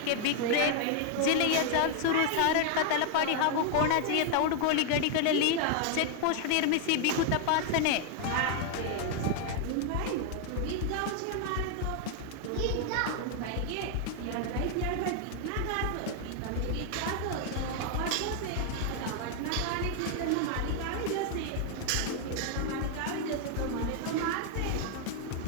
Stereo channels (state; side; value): different; both; correlation 0.00